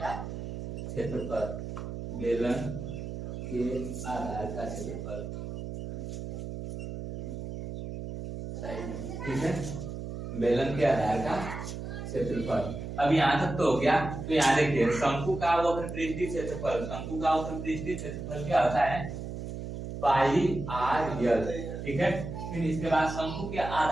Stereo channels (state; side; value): noise; right; hum, 7 dB below the sound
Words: का क्षेत्रफल, बेलन के आधार का क्षेत्रफल, ठीक है, बेलन के आधार का क्षेत्रफल। अब यहाँ तक तो हो गया। तो यहाँ देखिए शंकु का वक्र पृष्ठीय क्षेत्रफल, शंकु का वक्र पृष्ठीय क्षेत्रफल क्या होता है पाई आर यल, ठीक है। फिर इसके बाद शंकु के